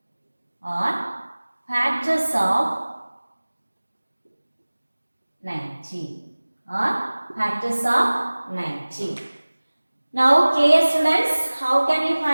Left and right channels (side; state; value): both; inverted; correlation -1.00